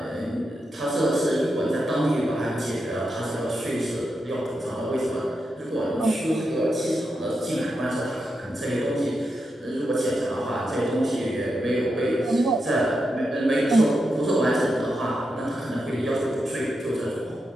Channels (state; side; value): normal; both; correlation 0.86